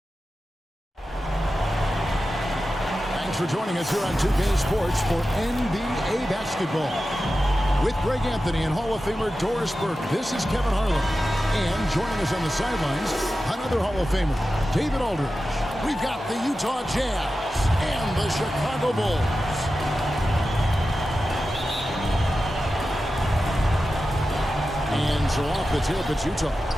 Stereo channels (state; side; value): normal; both; correlation 0.93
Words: Thanks for joining us here on 2K Sports for NBA basketball. With Greg Anthony and Hall of Famer Doris Burke, this is Kevin Harlan. And joining us on the sidelines, another Hall of Famer, David Aldridge. We've got the Utah Jazz and the Chicago Bulls. And so off the tip, it's Utah.